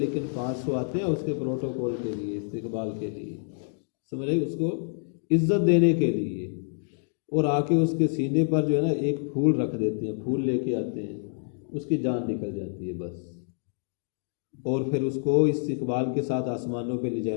500 آتے ہیں اس کے پروٹوکول کے لیے، استقبال کے لیے، سمجھ رہے، اس کو عزت دینے کے لیے، اور آ کے اس کے سینے پر جو ہے نا ایک پھول رکھ دیتے ہیں، پھول لے کے آتے ہیں، اس کی جان نکل جاتی ہے بس، اور پھر اس کو استقبال کے ساتھ آسمانوں پہ لے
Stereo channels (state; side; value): silent; right; digital silence